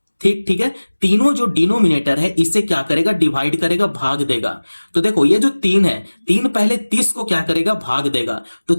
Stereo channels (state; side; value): inverted; both; correlation -1.00